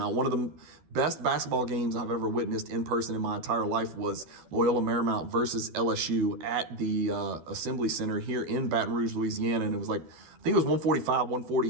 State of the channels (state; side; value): late; left; 12 ms